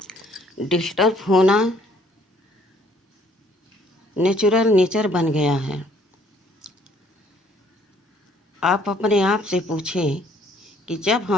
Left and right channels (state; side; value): normal; both; correlation 0.62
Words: डिस्टर्ब होना नेचुरल नेचर बन गया है। आप अपने आप से पूछें कि जब